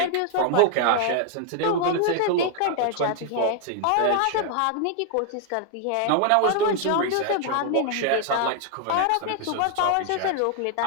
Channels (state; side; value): different; both; correlation 0.00